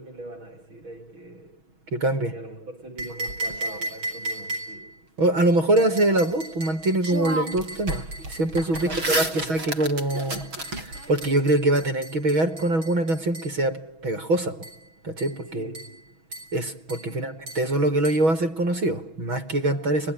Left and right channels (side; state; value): left; late; 6.2 ms